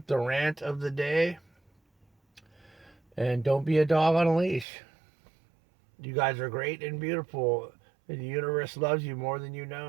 the rant of the day. And don't be a dog on a leash. You guys are great and beautiful. And the universe loves you more than you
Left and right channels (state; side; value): drops out; left; at 4.7 s